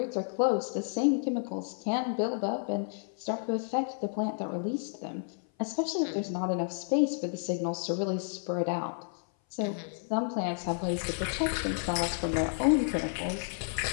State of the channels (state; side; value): silent; right; 56 dB below the other